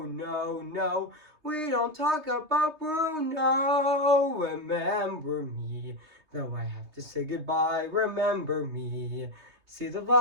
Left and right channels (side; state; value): left; late; 3.2 ms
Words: no. We don't talk about Bruno. Remember me. Though I have to say goodbye, remember me. See the